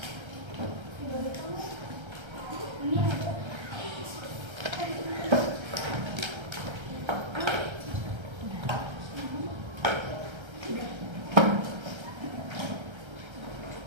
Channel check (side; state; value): left; late; 1.3 ms